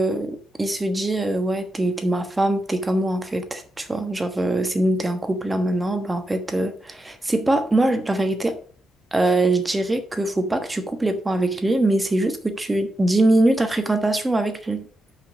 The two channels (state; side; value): normal; both; correlation 0.88